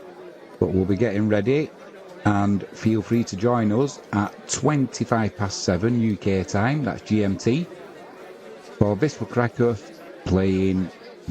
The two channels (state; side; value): identical; both; correlation 1.00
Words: But we'll be getting ready, and feel free to join us at 7:25 UK time, that's GMT, for Wisła Kraków playing